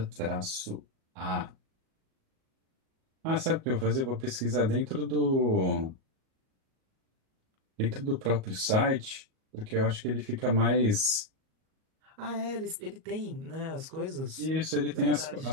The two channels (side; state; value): left; late; 37 ms